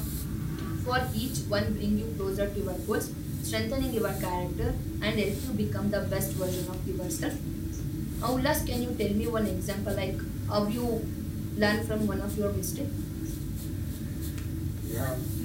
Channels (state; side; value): identical; both; correlation 1.00